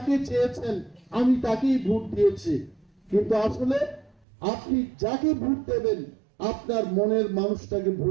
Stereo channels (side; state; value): left; drops out; at 4.2 s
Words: চেয়েছেন আমি তাকেই ভোট দিয়েছি, কিন্তু আসলে আপনি যাকে ভোট দেবেন আপনার মনের মানুষটাকে